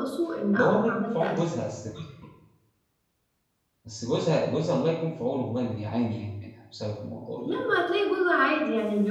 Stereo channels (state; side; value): identical; both; correlation 1.00